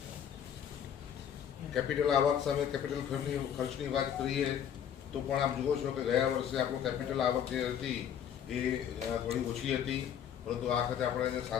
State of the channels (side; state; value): right; quieter; 9.0 dB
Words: કેપિટલ આવક સામે કેપિટલ ખર્ચની વાત કરીએ તો પણ આપ જુઓ છો કે ગયા વર્ષે આપણું કેપિટલ આવક જે હતી એ થોડી ઓછી હતી, પરંતુ આ વખતે આપણે